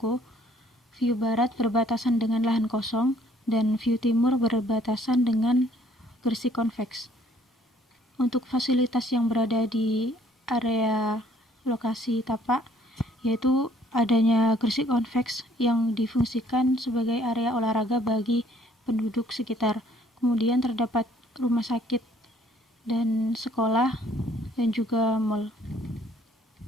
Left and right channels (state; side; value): normal; both; correlation 0.61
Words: View barat berbatasan dengan lahan kosong, dan view timur berbatasan dengan Gresik Convex. Untuk fasilitas yang berada di area lokasi tapak, yaitu adanya Gresik Convex yang difungsikan sebagai area olahraga bagi penduduk sekitar. Kemudian terdapat rumah sakit dan sekolah dan juga mall.